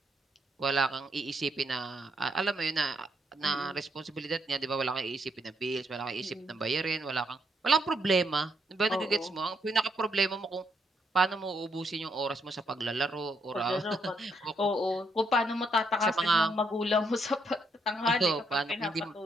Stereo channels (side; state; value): both; normal; correlation 0.76